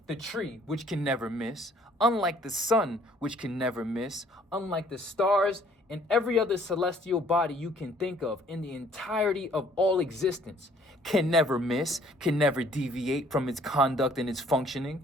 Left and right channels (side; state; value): both; normal; correlation 0.59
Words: the tree, which can never miss, unlike the sun, which can never miss, unlike the stars and every other celestial body you can think of in the entirety of all existence, can never miss, can never deviate from its conduct and its functioning,